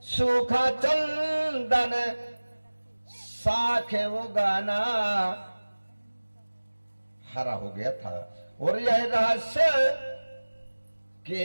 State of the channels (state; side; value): inverted; both; correlation -1.00